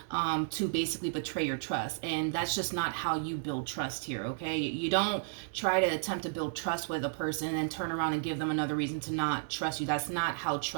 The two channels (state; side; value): silent; left; digital silence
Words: to basically betray your trust. And that's just not how you build trust here, okay? You don't try to attempt to build trust with a person and then turn around and give them another reason to not trust you. That's not how